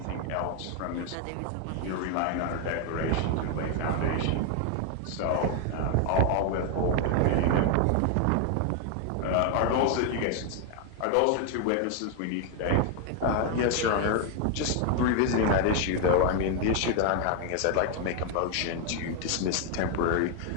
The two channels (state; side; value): different; both; correlation 0.01